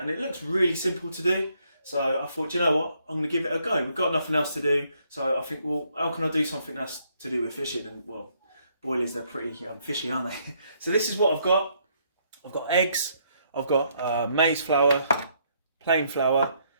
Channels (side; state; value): both; inverted; correlation -0.71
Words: it looks really simple to do. So I thought, you know what, I'm going to give it a go. We've got nothing else to do. So I think, well, how can I do something that's to do with fishing? And well, boilies, they're pretty fishy, aren't they? So this is what I've got. I've got eggs, I've got maize flour, plain flour,